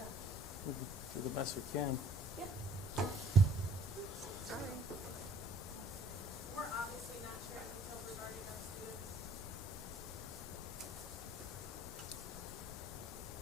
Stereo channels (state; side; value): normal; both; correlation 0.57